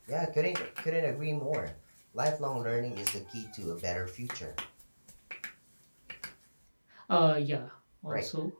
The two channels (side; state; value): both; inverted; correlation -1.00